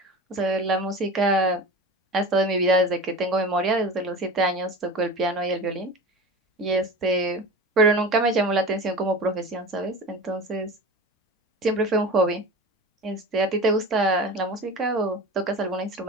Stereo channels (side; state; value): both; normal; correlation 0.32